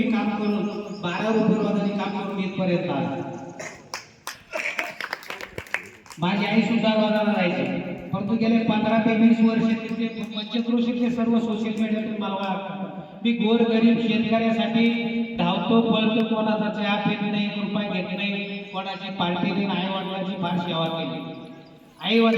काम करून 12 रुपये काम करून इथपर्यंत आलो. माझी आई सुद्धा रोजाला राहायची, परंतु गेले 15 ते 20 वर्ष तिथे पंचक्रोशीतले सर्व सोशल मीडियातून मला मी गोर गरीब शेतकऱ्यासाठी धावतो पळतो. कोणाचा चहा पेत नाही, रुपये घेत नाही, कोणाची पार्टी नाही. आई वडिलांची फार सेवा केली. आई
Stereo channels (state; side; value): identical; both; correlation 1.00